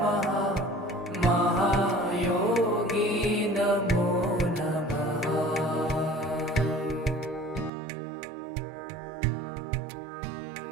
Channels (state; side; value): drops out; left; at 7.7 s